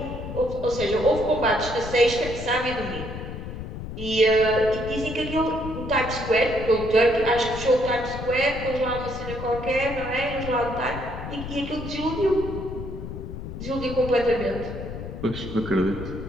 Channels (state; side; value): noise; left; rumble, 8 dB below the sound